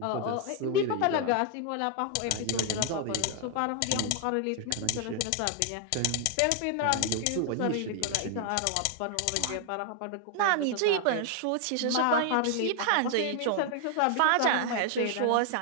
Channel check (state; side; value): different; both; correlation 0.00